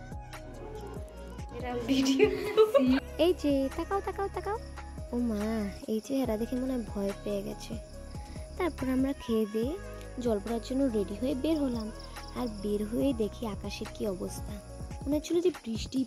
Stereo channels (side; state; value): both; identical; correlation 1.00